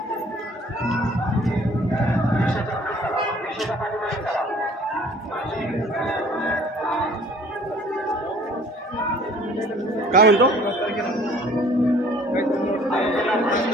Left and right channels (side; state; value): both; normal; correlation 0.53